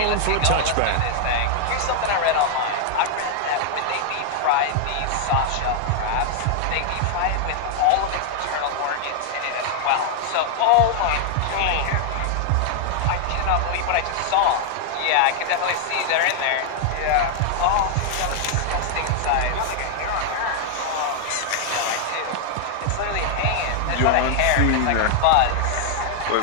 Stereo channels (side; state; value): both; different; correlation 0.00